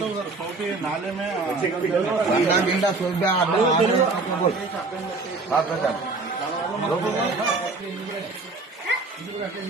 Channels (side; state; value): left; quieter; 3.6 dB